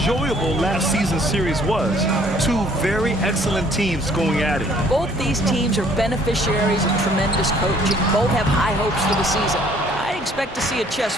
last season's series was. Two very excellent teams going at it. Both these teams are beneficiaries of tremendous coaching. Both have high hopes for the season. I expect to see a chess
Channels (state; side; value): normal; both; correlation 0.60